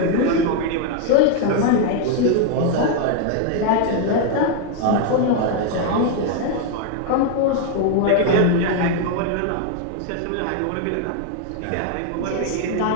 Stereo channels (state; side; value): different; both; correlation 0.01